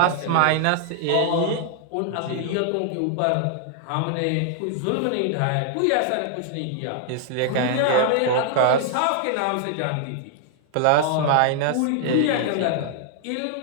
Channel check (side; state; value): both; different; correlation -0.01